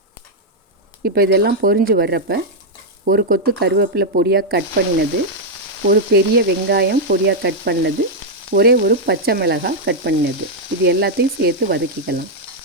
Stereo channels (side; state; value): both; normal; correlation -0.03